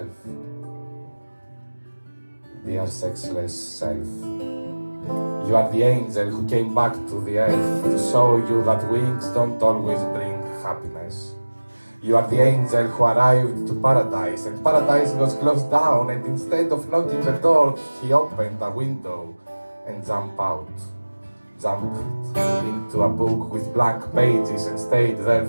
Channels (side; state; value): both; inverted; correlation -1.00